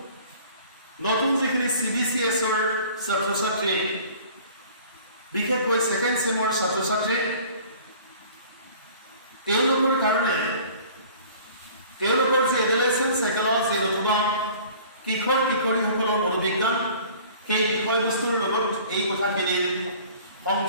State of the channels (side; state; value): both; inverted; correlation -0.48